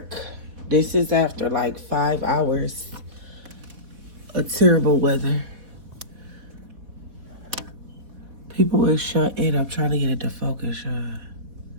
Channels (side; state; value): left; late; 4.1 ms